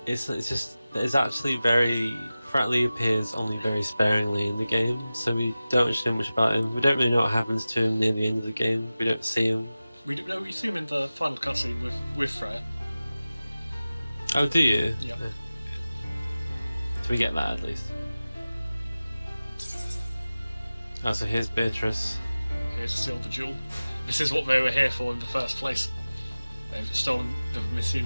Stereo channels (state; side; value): inverted; both; correlation -0.96